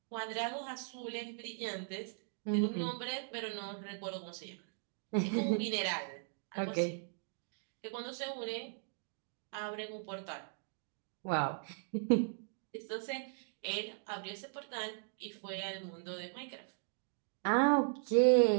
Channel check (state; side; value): silent; left; digital silence